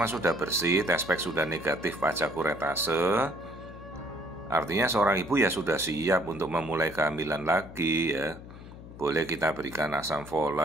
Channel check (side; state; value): left; noise; hum, 15 dB below the sound